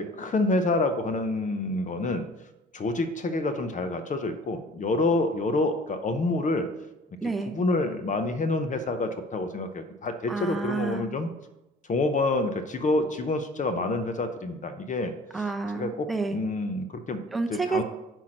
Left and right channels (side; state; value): both; normal; correlation 0.49